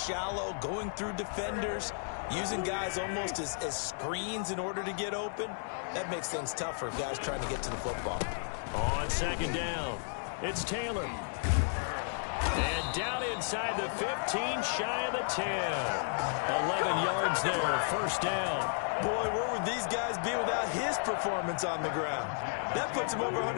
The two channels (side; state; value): right; silent; digital silence